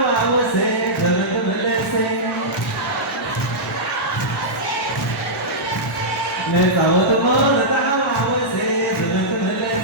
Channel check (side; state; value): both; normal; correlation -0.11